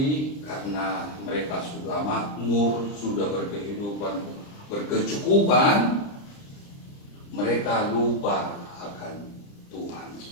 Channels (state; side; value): late; right; 30 ms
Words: karena mereka sudah makmur, sudah berkehidupan, berkecukupan, mereka lupa akan Tuhan.